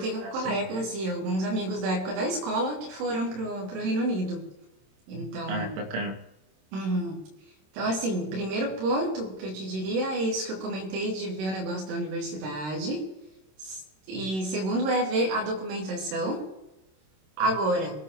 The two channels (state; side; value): late; left; 26 ms